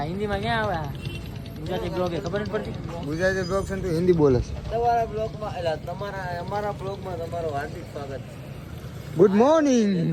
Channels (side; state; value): both; identical; correlation 1.00